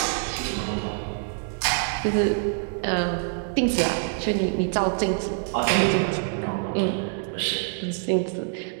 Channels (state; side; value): silent; left; digital silence